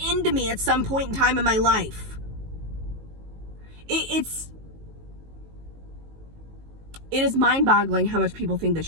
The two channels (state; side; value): late; left; 19 ms